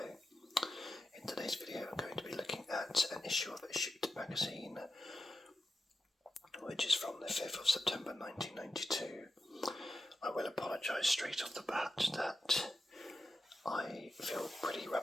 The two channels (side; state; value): both; normal; correlation 0.90